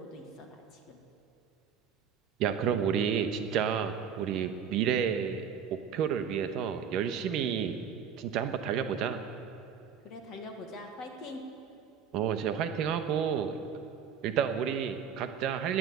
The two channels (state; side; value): quieter; left; 7.5 dB